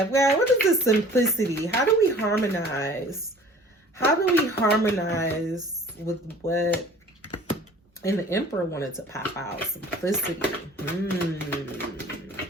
Well, what is the simplicity? How do we harmonize? How do we harmonize with what? And the Emperor wanted to pop out. Simplicity.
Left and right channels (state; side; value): normal; both; correlation 0.48